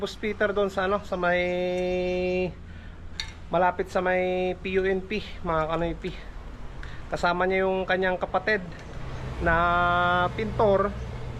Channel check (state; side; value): identical; both; correlation 1.00